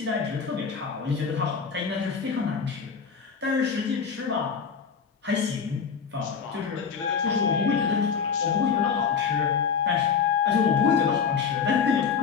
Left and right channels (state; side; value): quieter; right; 6.2 dB